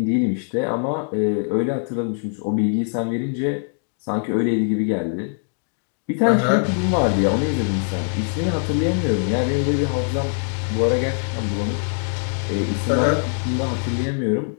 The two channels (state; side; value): silent; right; 64 dB below the other